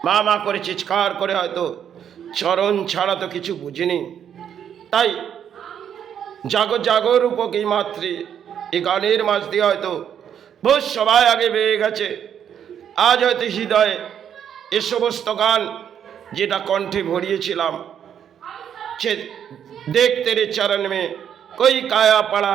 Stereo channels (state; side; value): quieter; left; 8.9 dB